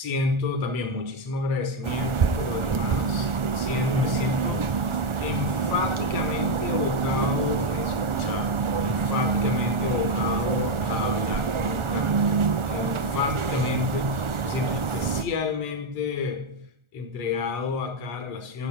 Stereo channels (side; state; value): left; late; 1.4 ms